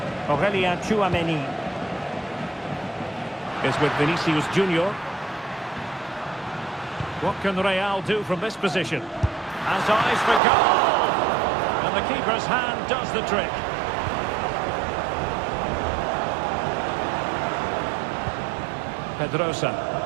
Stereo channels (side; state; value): left; drops out; at 10.4 s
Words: Aurelien Tchouameni is with Vinicius Junior. What can Real do from this position? Has eyes for goal! And the keeper's hand does the trick. Pedrosa.